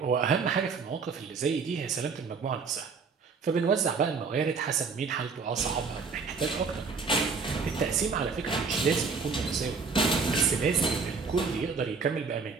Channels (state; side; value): quieter; left; 5.0 dB